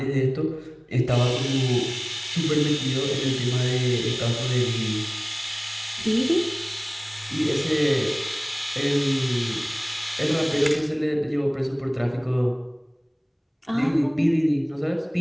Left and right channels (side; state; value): both; identical; correlation 1.00